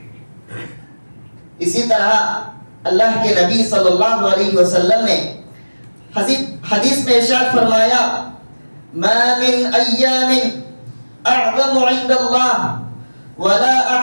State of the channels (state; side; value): inverted; both; correlation -1.00